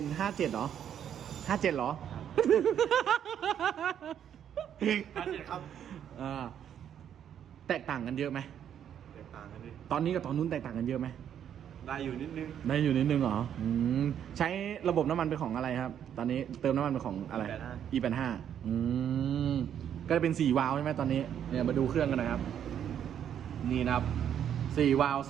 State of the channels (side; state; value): left; quieter; 9.4 dB